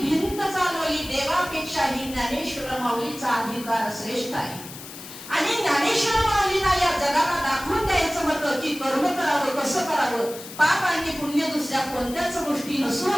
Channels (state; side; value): noise; left; hiss, 14 dB below the sound